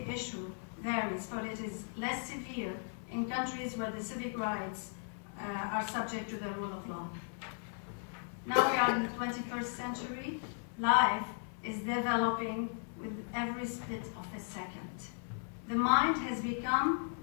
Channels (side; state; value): right; silent; 53 dB below the other